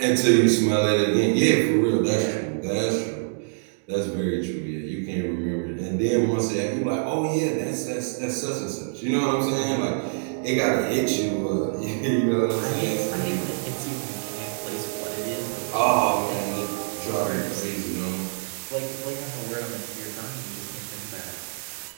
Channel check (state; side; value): silent; left; digital silence